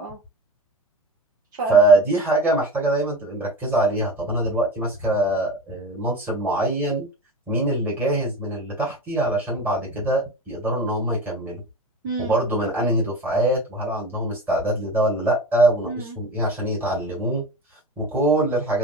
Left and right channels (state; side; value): normal; both; correlation 0.30